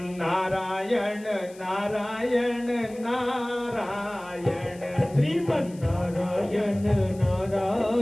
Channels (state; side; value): noise; left; hiss, 24 dB below the sound